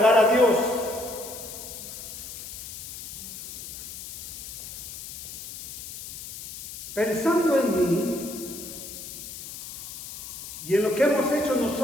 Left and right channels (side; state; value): left; noise; hiss, 10 dB below the sound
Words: a Dios. Pensando en mí y en lo que hemos hecho